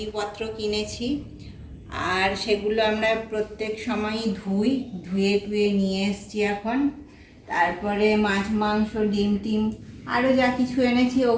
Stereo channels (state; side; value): identical; both; correlation 1.00